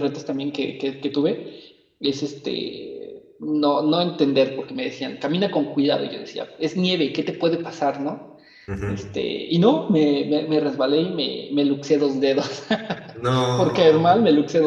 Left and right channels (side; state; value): both; identical; correlation 1.00